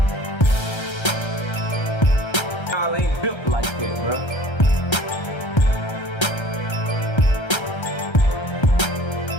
y'all ain't built like that, bro.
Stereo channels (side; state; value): right; late; 1.3 ms